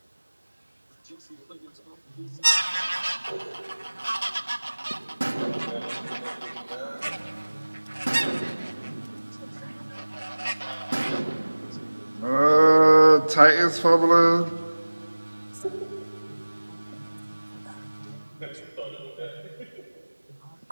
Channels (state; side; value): inverted; both; correlation -1.00